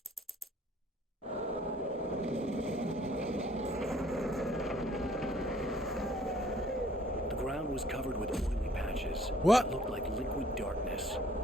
The ground was covered with oily patches. What? It looked like liquid darkness.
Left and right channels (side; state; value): both; normal; correlation 0.58